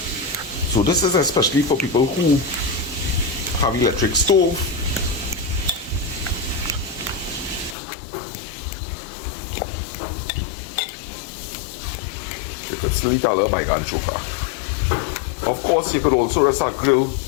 So this is especially for people who have electric stove. You could still eat a little Buygun Choka. Of course, you could also rest a grill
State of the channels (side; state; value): right; drops out; at 7.8 s